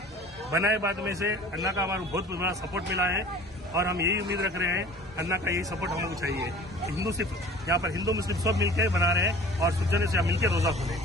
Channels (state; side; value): normal; both; correlation 0.45